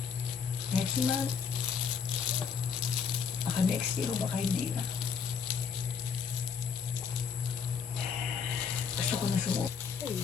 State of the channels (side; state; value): right; quieter; 6.4 dB